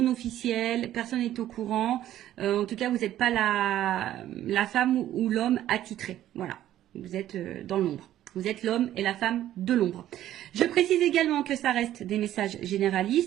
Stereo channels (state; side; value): quieter; left; 12.7 dB